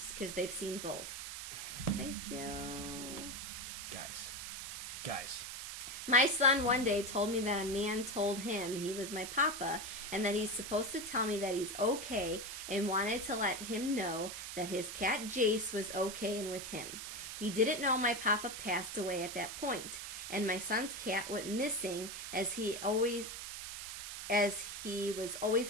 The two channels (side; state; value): right; noise; hiss, 7 dB below the sound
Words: because they've seen both. Thank you. Guys. My son one day told me that a man told him he was my papa and that he's supposed to tell me that he's okay and wanted to let him know that his cat Jace was okay and with him. He didn't know my papa passed away at that point, and my son's cat went missing as he was always